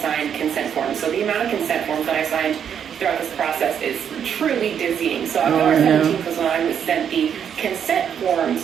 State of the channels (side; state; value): left; quieter; 8.3 dB